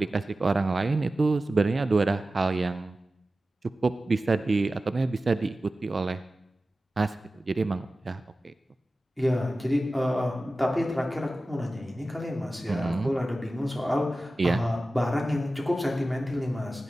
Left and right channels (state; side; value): normal; both; correlation 0.95